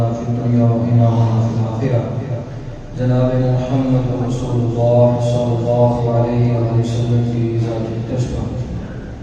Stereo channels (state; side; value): identical; both; correlation 1.00